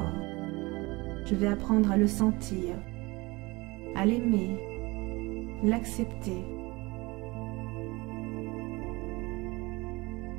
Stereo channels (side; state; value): left; quieter; 23.1 dB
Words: je vais apprendre à le sentir, à l'aimer, l'accepter.